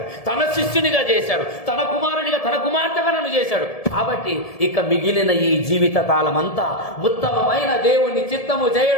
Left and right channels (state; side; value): late; right; 1.7 ms